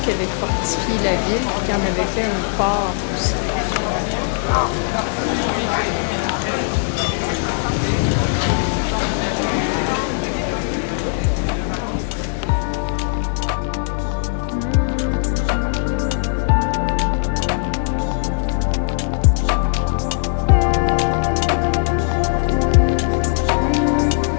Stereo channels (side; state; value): right; silent; digital silence